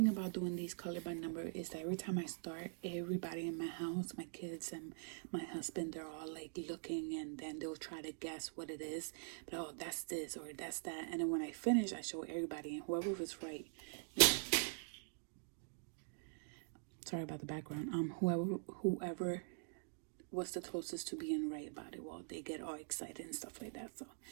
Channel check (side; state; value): left; silent; digital silence